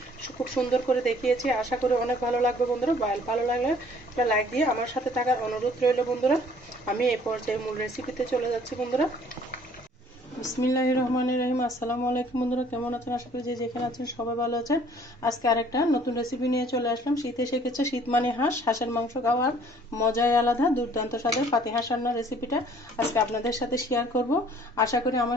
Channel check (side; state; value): both; normal; correlation 0.56